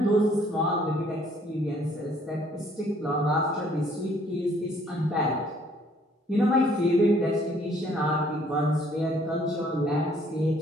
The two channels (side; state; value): both; normal; correlation 0.62